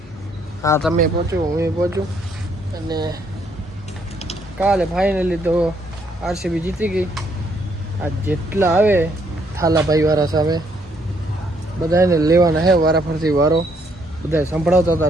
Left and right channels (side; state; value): both; normal; correlation 0.70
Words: હા, તમે પહોંચો, હું પહોંચું. અને કાલે ફાઇનલી તો આરસીબી જીતી ગઈ. આ જેટલા આવે થાલાભાઈ વાળા સામે બધાને લેવાના હે વારાફરતી વારો. બધા સંભળાવતા હતા